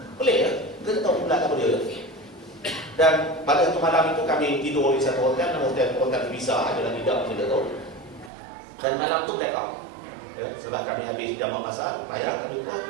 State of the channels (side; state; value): left; drops out; at 8.3 s